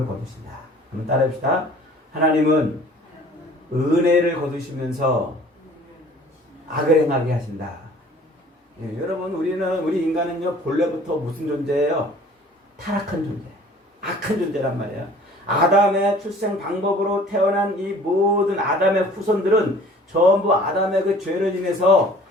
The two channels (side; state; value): both; normal; correlation 0.50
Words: 거두신다. 한번 따라해봅시다. 하나님은 은혜를 거두시면서 악을 행하게 하신다. 예, 여러분, 우리 인간은요, 본래부터 무슨 존재예요? 타락한 존재, 악한 존재란 말이에요. 아담의 출생 방법으로 태어난 이 모든 아담의 후손들은 전부 아담의 그 죄를 인해서